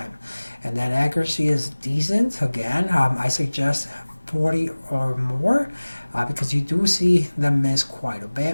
And then accuracy is decent. Again, I suggest 40 or more because you do see them miss quite a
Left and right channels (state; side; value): inverted; both; correlation -1.00